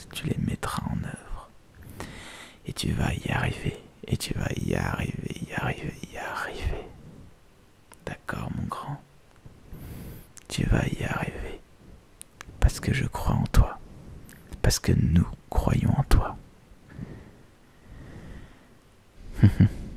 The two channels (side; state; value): both; identical; correlation 1.00